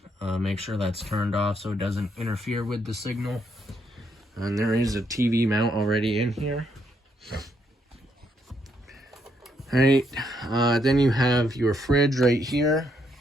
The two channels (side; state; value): both; normal; correlation 0.75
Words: make sure that's turned off so it doesn't interfere with the signal. And there is a TV mount already in here. Alright, then you have your fridge right here.